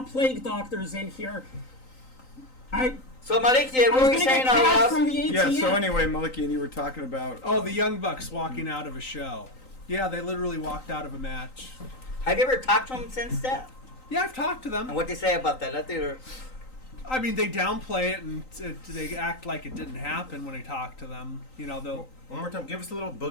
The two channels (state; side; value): late; right; 3.9 ms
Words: plague doctors in here. So Melikian, what were you saying cash from about? the ATM. Yeah. So anyway, Melikian, you were talking about. Oh, the Young Bucks walking out of a show. Yeah, they literally walked out of a match. Have you ever talked to him since that? Yeah, I've talked to them. And what they say about that? I mean, they downplay it and they act like it didn't happen when I talk to them. They'll. One more time. Give us a little